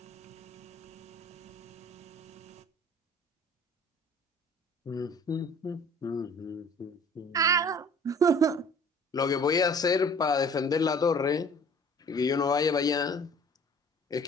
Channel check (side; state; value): both; normal; correlation 0.50